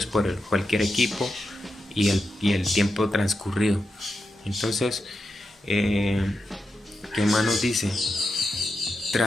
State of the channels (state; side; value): normal; both; correlation 0.88